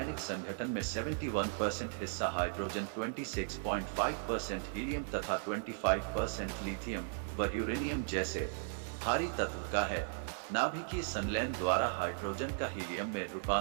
संगठन में 71% हिस्सा हाइड्रोजन, 26.5% हीलियम तथा 25% लिथियम व यूरेनियम जैसे भारी तत्व का है। नाभिकीय संलयन द्वारा हाइड्रोजन का हीलियम में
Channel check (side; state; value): left; silent; digital silence